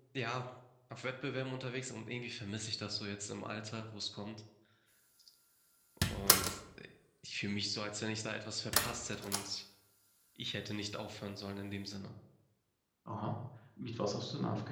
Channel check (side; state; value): both; identical; correlation 1.00